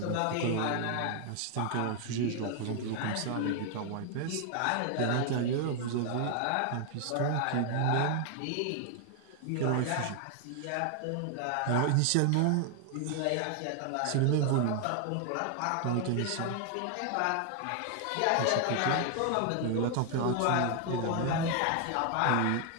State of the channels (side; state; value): both; different; correlation 0.00